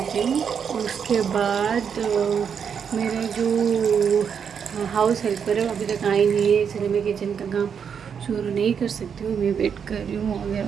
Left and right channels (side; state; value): left; quieter; 7.1 dB